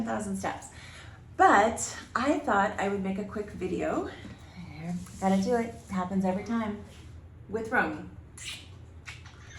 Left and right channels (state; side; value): identical; both; correlation 1.00